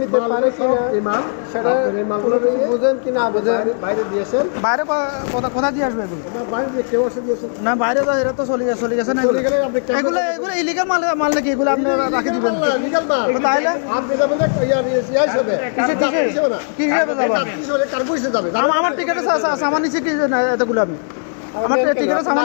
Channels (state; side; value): silent; right; 67 dB below the other